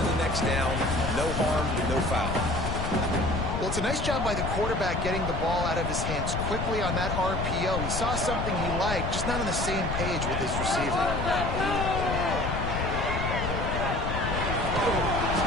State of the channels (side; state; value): left; noise; rumble, 2 dB below the sound